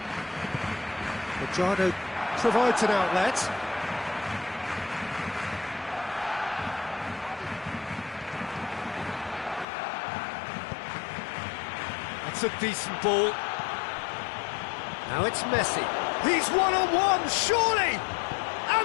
Cuadrado provides an outlet. That's a decent ball. Now it's Messi. He's one-on-one, surely!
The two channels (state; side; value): drops out; right; at 9.7 s